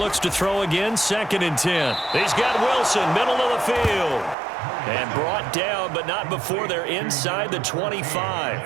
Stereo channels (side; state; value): left; drops out; at 4.4 s